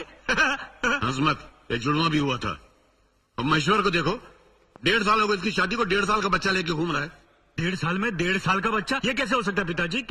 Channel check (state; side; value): identical; both; correlation 1.00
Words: हंस मत, एक जुड़वा भी हुआ था। अब महेश्वर को देखो, 1.5 साल हो गए इसकी शादी को, 1.5 साल का बच्चा लेके घूम रहा है। 1.5 साल में 1.5 साल का बच्चा? ये कैसे हो सकता है पिताजी?